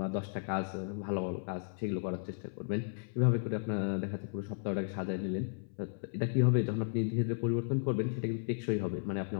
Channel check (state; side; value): silent; right; 55 dB below the other